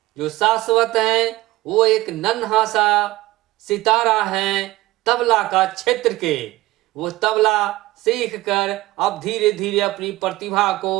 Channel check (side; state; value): left; quieter; 17.9 dB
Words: जो शाश्वत है वो एक नन्हा सा सितारा है तबला का क्षेत्र के। वो तबला सीख कर अब धीरे धीरे अपनी प्रतिभा को